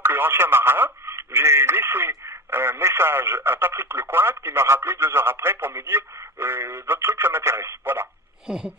marin, j'ai laissé un message à Patrick Lecointe qui m'a rappelé 2 heures après pour me dire votre truc ça m'intéresse, voilà.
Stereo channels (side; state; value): both; normal; correlation 0.27